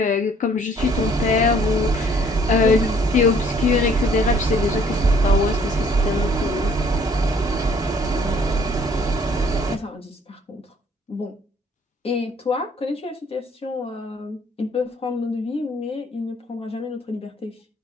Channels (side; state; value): both; normal; correlation 0.60